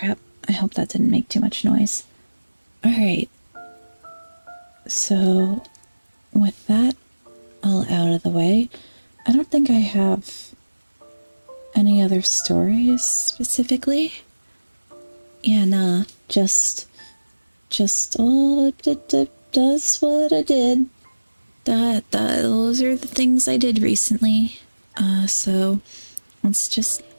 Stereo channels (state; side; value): inverted; both; correlation -1.00